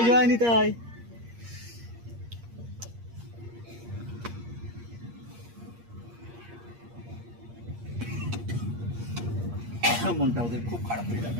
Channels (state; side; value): late; left; 8.5 ms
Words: জয় নিতাই। মনটা ওদের খুব খারাপ হয়ে